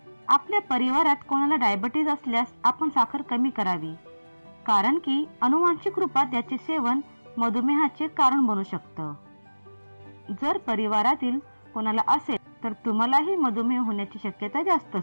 आपल्या परिवारात कोणाला डायबिटीज असल्यास आपण साखर कमी करावी, कारण की अनुवांशिक रूपात त्याचे सेवन मधुमेहाचे कारण बनू शकतं। जर परिवारातील कोणाला असेल तर तुम्हालाही मधुमेह होण्याची शक्यता जास्त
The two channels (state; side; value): inverted; both; correlation -1.00